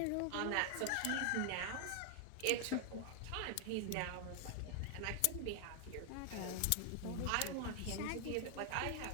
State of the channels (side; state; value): both; different; correlation 0.00